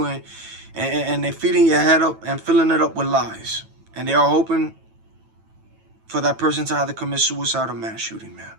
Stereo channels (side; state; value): left; late; 9.1 ms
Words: and they're feeding your head up and filling it up with lies. And they are hoping for that person to either commit suicide or mass shooting, man.